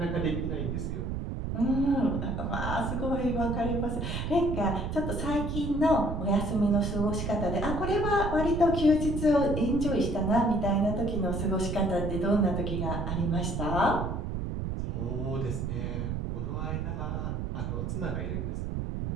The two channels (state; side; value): noise; right; rumble, 3 dB below the sound